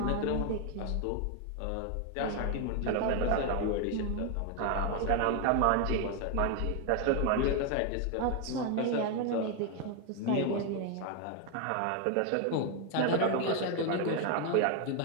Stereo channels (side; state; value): both; different; correlation 0.01